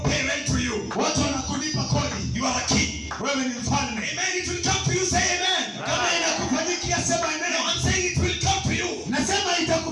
pay rent to you. Watu wanakulipa kodi. You are a king. Wewe ni mfalme. Amen. It will come to you. Say amen. Kama inakufanyikia sema No, amen. I'm saying it will come to you. Nasema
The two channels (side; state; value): both; identical; correlation 1.00